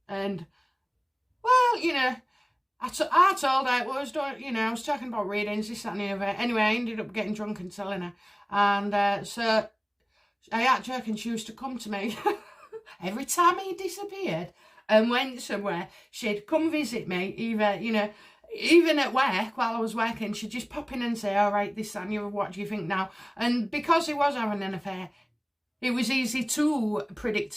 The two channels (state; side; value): identical; both; correlation 1.00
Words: and well, you know, I told her, well, I was talking about readings, this, that and the other. Anyway, I ended up getting drunk and telling her. And so I had joke, and she used to come to me every time he disappeared and went somewhere. She'd come visit me, even at work while I was working. She'd just pop in and say, all right, this, that and the other, what do you think now? And because he was having an affair, it was easy to predict